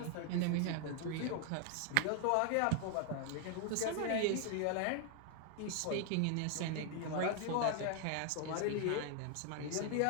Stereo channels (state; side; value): different; both; correlation 0.00